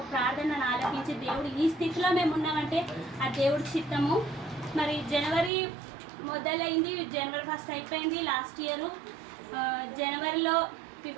ప్రార్థనను ఆలకించి దేవుడు ఈ స్థితిలో మేము ఉన్నామంటే ఆ దేవుడి చిత్తము. మరి జనవరి మొదలైంది, జనవరి 1 అయిపోయింది లాస్ట్ ఇయర్. జనవరిలో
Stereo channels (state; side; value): drops out; left; at 5.5 s